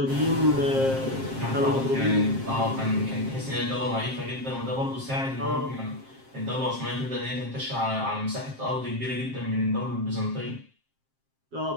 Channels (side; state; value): left; late; 7.5 ms